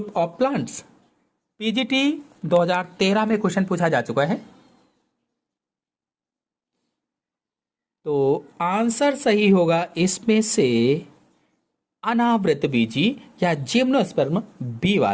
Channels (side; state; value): both; identical; correlation 1.00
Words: of plants. PGT 2013 में क्वेश्चन पूछा जा चुका है। तो आंसर सही होगा इसमें से अनावृत बीजी या जिम्नोस्पर्म बी